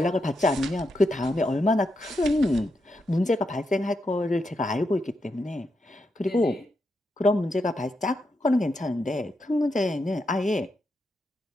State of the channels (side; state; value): both; normal; correlation 0.84